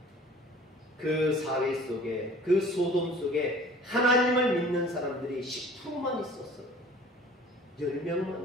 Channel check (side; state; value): both; normal; correlation 0.48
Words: 그 사회 속에, 그 소돔 속에 하나님을 믿는 사람들이 10%만 있었어요.